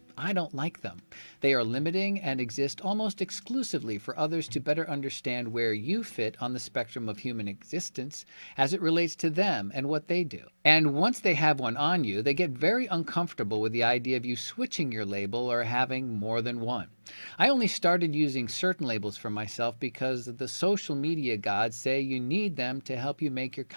I don't like them. They are limiting and exist almost exclusively for others to better understand where you fit on the spectrum of human existence as it relates to them and what they do. And once they have one on you, they get very uncomfortable with the idea of you switching your label or having more than one. I only started using certain labels for myself because the social media gods say you need them to help you make your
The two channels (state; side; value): inverted; both; correlation -1.00